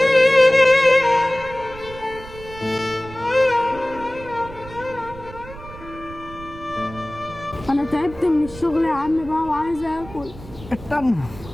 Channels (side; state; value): right; noise; rumble, 16 dB below the sound